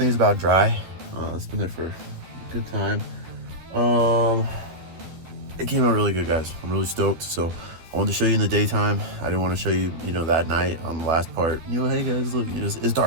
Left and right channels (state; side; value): late; left; 12 ms